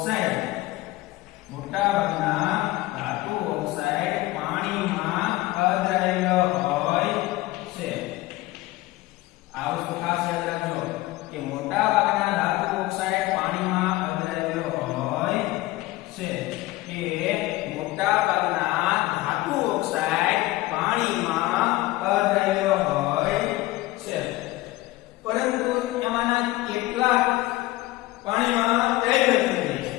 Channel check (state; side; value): quieter; right; 18.4 dB